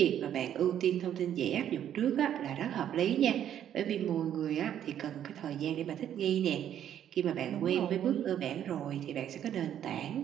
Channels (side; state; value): left; quieter; 10.2 dB